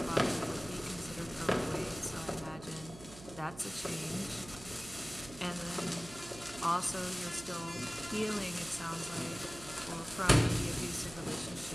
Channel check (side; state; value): right; noise; hum, 16 dB below the sound